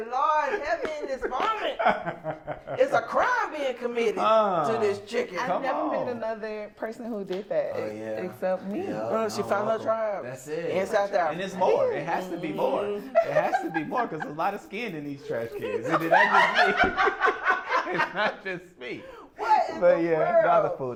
Lord, help me in this moment. It's a crime being committed to this chicken. I've never met another person who did that except me. Yeah. She found her tribe. That's it. In South Africa. And it's more. It has to be more. It has to be more because there's a lot of skin in these trash cans. It's not just me. What in But the yeah,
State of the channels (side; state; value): both; identical; correlation 1.00